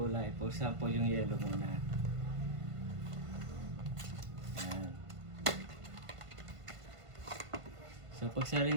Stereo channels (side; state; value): left; late; 1.5 ms